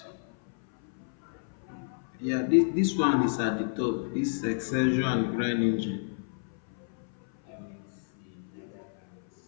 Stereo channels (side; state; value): right; silent; 58 dB below the other